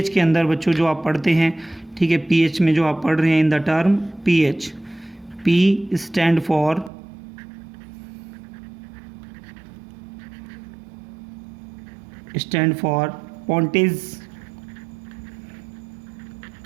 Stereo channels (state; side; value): drops out; left; at 6.9 s